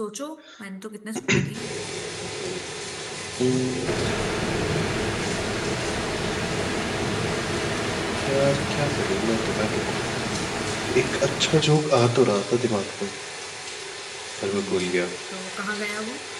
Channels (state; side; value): identical; both; correlation 1.00